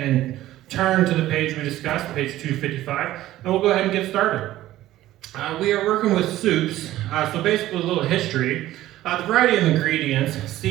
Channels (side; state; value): left; quieter; 14.8 dB